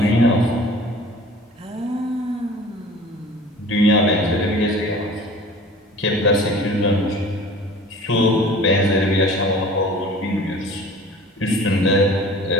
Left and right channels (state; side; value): normal; both; correlation 0.44